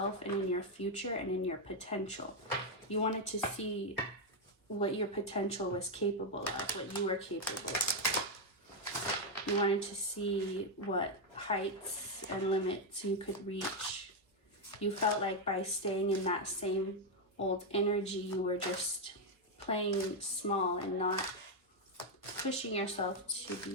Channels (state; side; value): normal; both; correlation 0.02